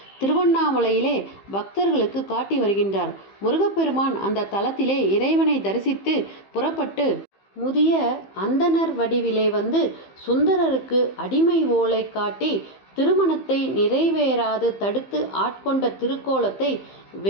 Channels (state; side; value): late; right; 15 ms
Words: திருவண்ணாமலையிலே பக்தர்களுக்கு காட்டி வருகின்றார். முருகப்பெருமான் அந்த தலத்திலே இறைவனை தரிசித்து புறப்பட்டு முதிய அந்தணர் வடிவிலே வந்து சுந்தரருக்கு அடிமை ஓலை காட்டி திருமணத்தை நிறைவேறாது தடுத்து ஆட்கொண்ட திருக்கோலத்தை